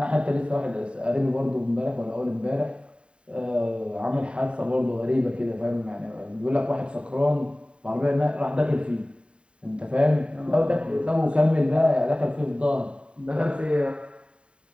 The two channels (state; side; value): late; left; 0.055 ms